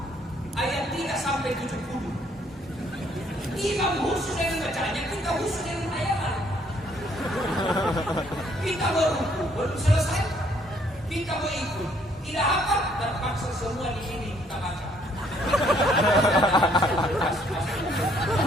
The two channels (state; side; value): normal; both; correlation 0.66